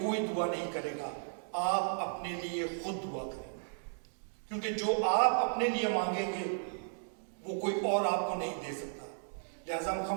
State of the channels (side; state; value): left; silent; digital silence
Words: دعا نہیں کرے گا، آپ اپنے لیے خود دعا کریں، کیونکہ جو آپ اپنے لیے مانگیں گے وہ کوئی اور آپ کو نہیں دے سکتا۔ لہٰذا ہم